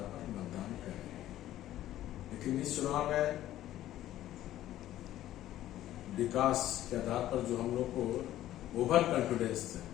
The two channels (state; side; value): quieter; right; 13.4 dB